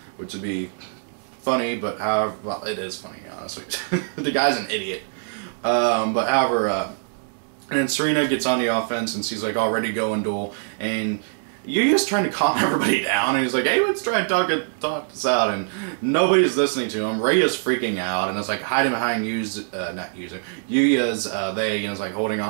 which would be funny, but however, well, it is funny, honestly. The guy's an idiot. But however, and then Serena gets on the offense, and she's like, all ready to go and duel, and Yuya's trying to calm everybody down, and he's like, hey, let's try and talk this out, and nobody's listening to him. Ray is freaking out, and it's like hiding behind Yuya's they, and it's like holding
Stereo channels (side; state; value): left; silent; digital silence